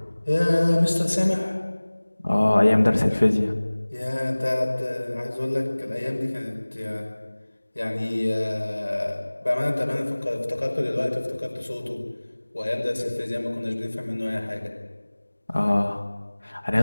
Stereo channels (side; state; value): both; inverted; correlation -1.00